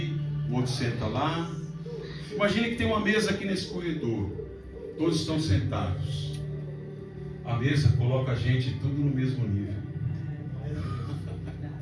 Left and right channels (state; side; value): identical; both; correlation 1.00